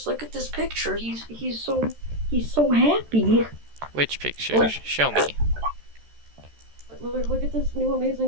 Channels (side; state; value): left; late; 13 ms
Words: look at this picture. He's so happy. Which picture? Look. Show me. Look at this new